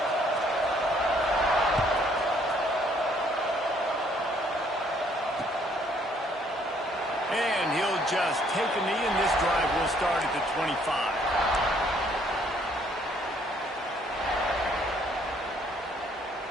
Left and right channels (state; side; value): normal; both; correlation 0.65